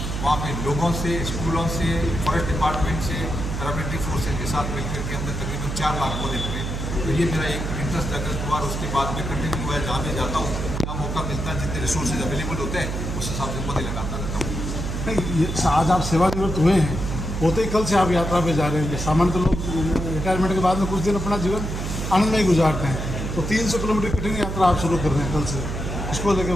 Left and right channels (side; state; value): right; noise; hum, 4 dB below the sound